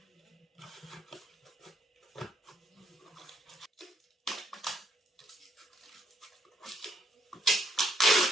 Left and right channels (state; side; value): normal; both; correlation 0.71